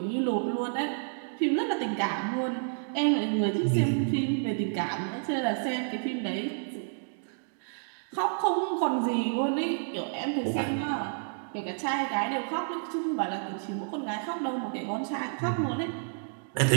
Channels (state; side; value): silent; left; digital silence